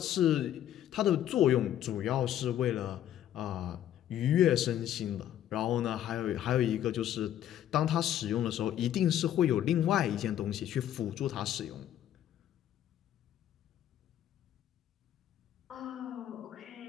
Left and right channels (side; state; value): right; quieter; 11.4 dB